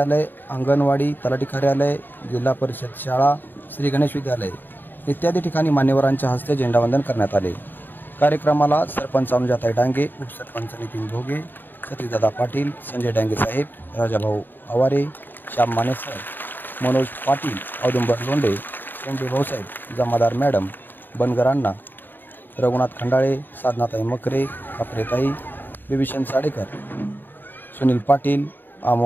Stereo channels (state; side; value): late; right; 0.092 ms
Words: अंगणवाडी, तलाठी कार्यालय, जिल्हा परिषद शाळा, श्री गणेश विद्यालय इत्यादी ठिकाणी मान्यवरांच्या हस्ते झेंडावंदन करण्यात आले। कार्यक्रमाला सरपंच अनुजाताई डांगे, उपसरपंच नितीन भोगे, सतीशदादा पाटील, संजय डांगे साहेब, राजाभाऊ आवारे, श्याम माने सर, मनोज पाटील, औदुंबर लोंढे, शेंडे भाऊसाहेब, जमादार मॅडम, बनगर अण्णा, रघुनाथ खंडाळे, साधनाताई मकरे, कापरेताई, बिभीषण साडेकर, सुनील पाटील,